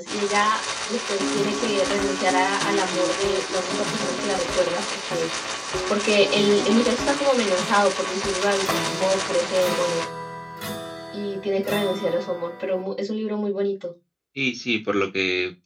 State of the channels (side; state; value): both; identical; correlation 1.00